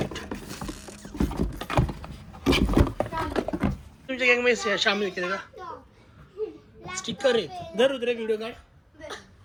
तुमच्या गँग मध्ये शामिल केले का? स्टिकर आहे. धर उतरे व्हिडिओ काढ.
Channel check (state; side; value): identical; both; correlation 1.00